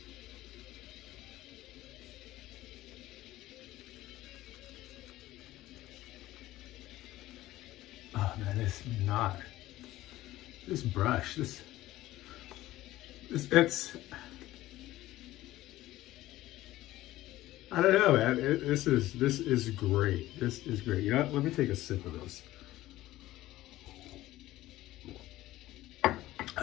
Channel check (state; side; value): quieter; right; 16.0 dB